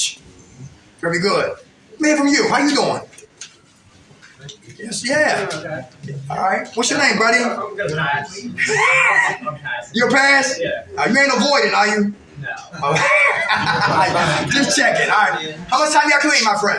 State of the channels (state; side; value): identical; both; correlation 1.00